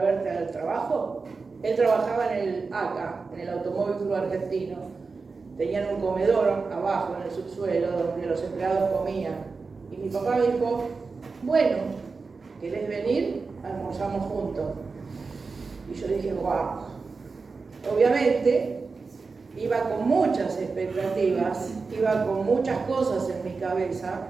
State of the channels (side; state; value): left; quieter; 4.4 dB